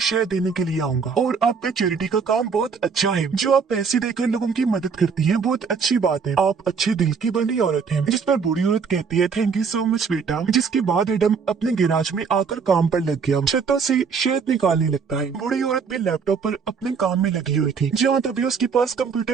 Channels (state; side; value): quieter; left; 5.7 dB